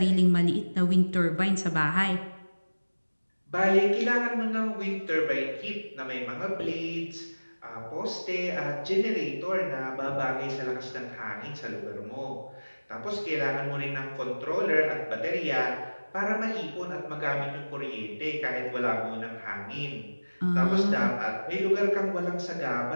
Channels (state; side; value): inverted; both; correlation -1.00